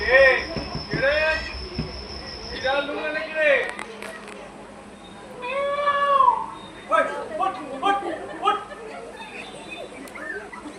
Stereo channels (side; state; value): both; identical; correlation 1.00